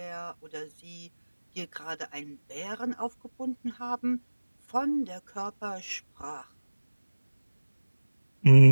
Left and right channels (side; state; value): both; inverted; correlation -1.00